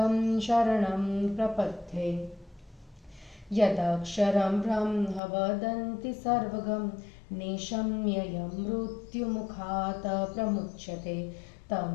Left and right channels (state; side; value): drops out; right; at 5.2 s